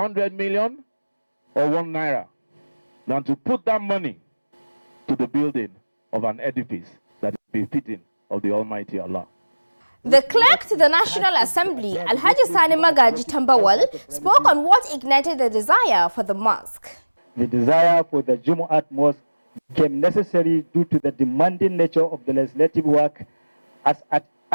million or 1 naira, than to put that money to the building of an edifice that is befitting of the Almighty Allah. The clerk to the National Assembly, Alhaji Sani Magaji Tambawal, spoke on what ignited the desire for the mosque. The desire for the Jumu'at mosque became necessary due to the demanding nature of the legislative work as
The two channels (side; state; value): both; inverted; correlation -1.00